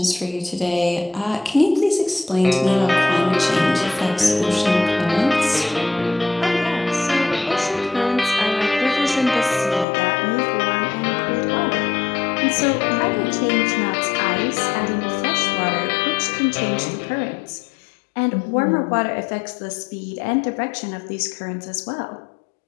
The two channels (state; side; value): drops out; right; at 9.9 s